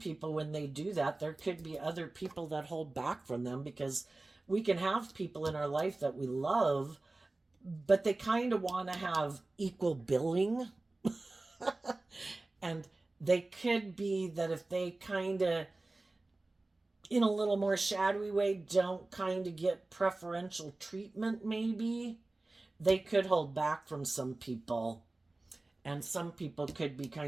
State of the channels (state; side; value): quieter; left; 3.0 dB